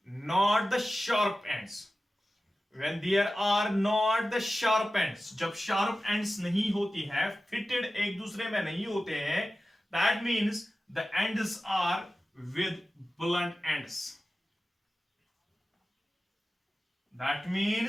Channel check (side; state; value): both; normal; correlation 0.95